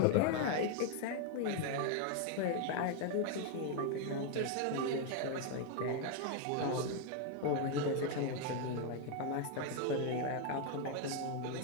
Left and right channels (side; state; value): both; different; correlation 0.01